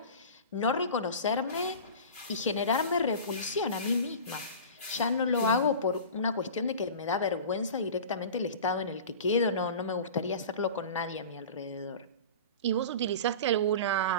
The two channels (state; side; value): inverted; both; correlation -0.35